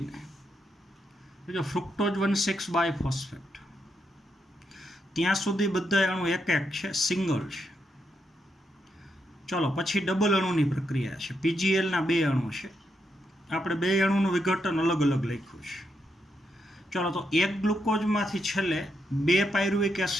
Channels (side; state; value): both; normal; correlation 0.81